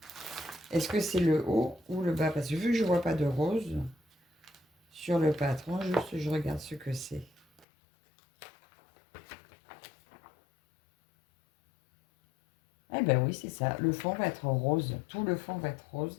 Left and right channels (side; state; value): right; drops out; at 7.7 s